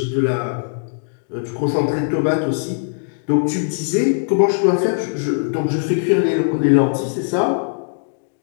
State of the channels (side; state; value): right; silent; digital silence